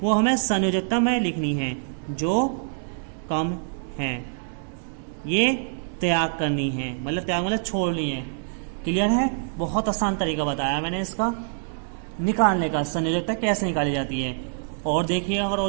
वो हमें संयोजकता में लिखनी है। जो कम है ये त्याग करनी है, मतलब त्याग मतलब छोड़नी है। क्लियर है? बहुत आसान तरीका बताया मैंने इसका निकालने का, संयोजकता कैसे निकाली जाती है। और देखिए, अगर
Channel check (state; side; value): silent; left; 62 dB below the other